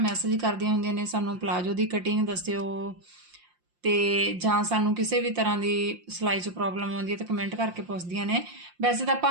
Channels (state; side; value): late; left; 5.7 ms